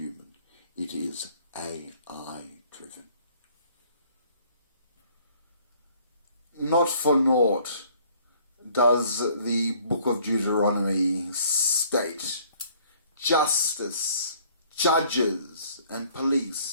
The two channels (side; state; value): both; inverted; correlation -0.58